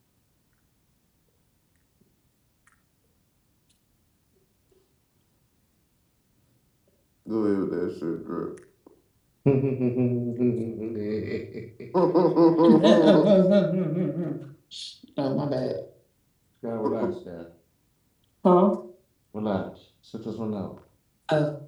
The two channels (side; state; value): both; identical; correlation 1.00